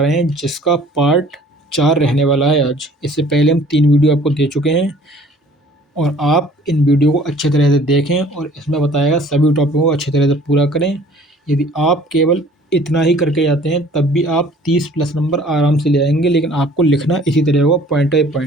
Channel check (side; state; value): both; normal; correlation 0.52